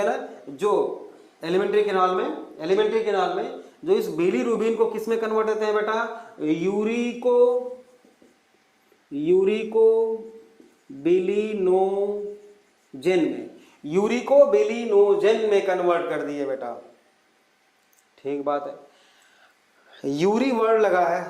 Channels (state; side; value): identical; both; correlation 1.00